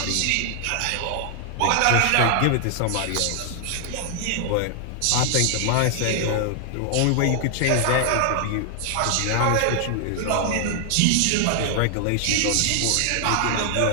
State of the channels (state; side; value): different; both; correlation 0.00